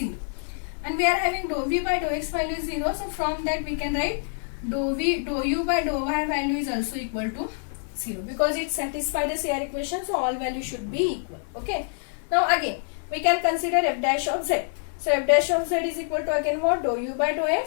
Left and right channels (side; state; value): right; silent; 61 dB below the other